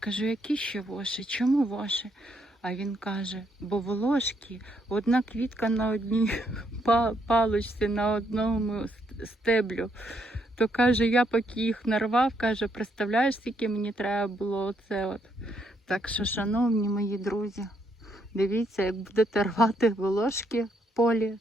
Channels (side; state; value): both; normal; correlation 0.74